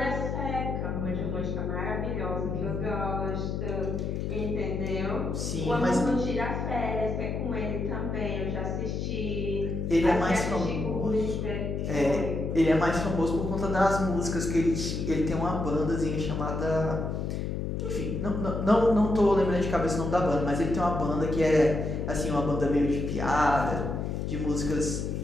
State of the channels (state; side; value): noise; left; hum, 2 dB below the sound